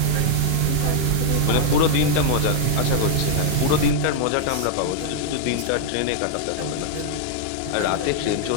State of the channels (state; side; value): different; both; correlation -0.01